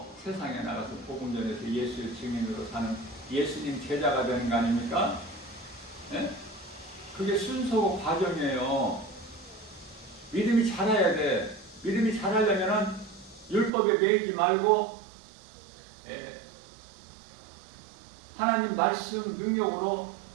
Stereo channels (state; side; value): drops out; left; at 13.7 s